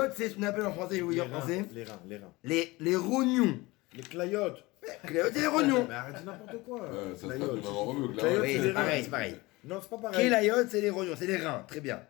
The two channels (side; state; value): right; quieter; 21.9 dB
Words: c'est ce qu'on appelle en français, je vais vous dire en français. Les reins. Les rognons. Les clayotes. Kelayot, c'est les rognons. Mais arrête n'importe quoi. ça se passe Clayotes. de maman remue, là. Clayotes, Oui, c'est c'est les pareil, reins. c'est pareil. Non, c'est pas pareil. Kelayot, c'est les rognons, c'est les reins. Très bien.